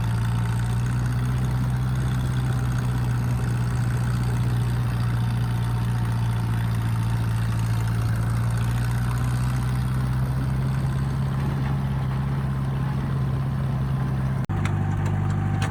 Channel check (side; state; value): both; identical; correlation 1.00